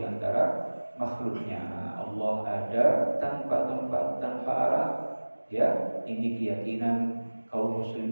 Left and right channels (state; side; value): inverted; both; correlation -1.00